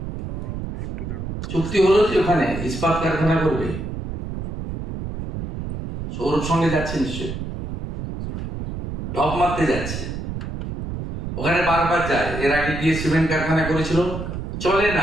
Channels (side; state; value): right; noise; rumble, 6 dB below the sound